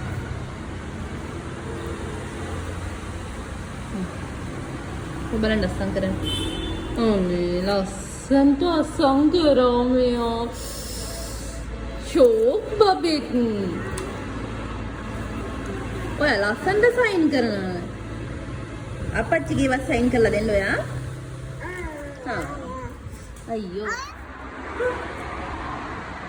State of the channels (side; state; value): both; identical; correlation 1.00